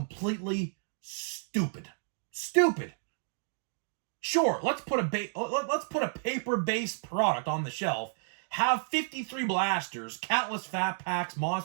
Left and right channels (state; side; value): silent; left; digital silence